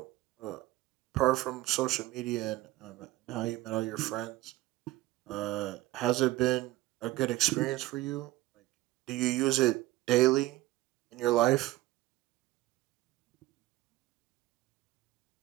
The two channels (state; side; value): quieter; left; 17.3 dB